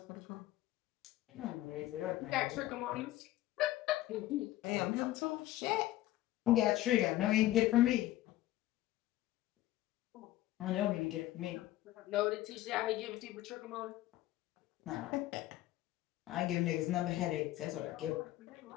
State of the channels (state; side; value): quieter; right; 15.2 dB